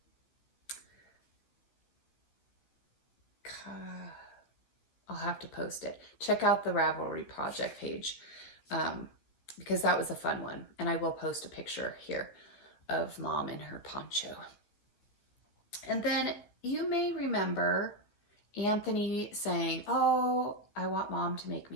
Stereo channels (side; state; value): right; late; 14 ms